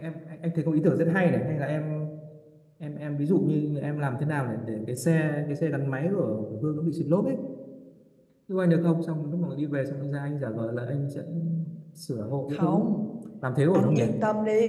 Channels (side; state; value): both; identical; correlation 1.00